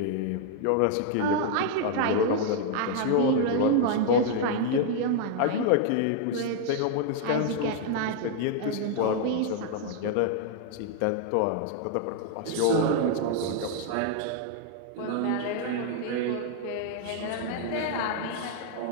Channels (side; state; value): both; different; correlation 0.00